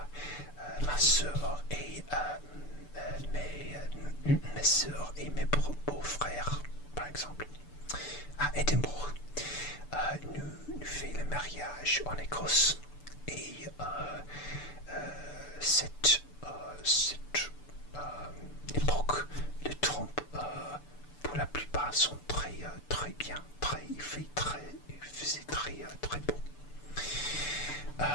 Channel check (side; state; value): right; late; 6.8 ms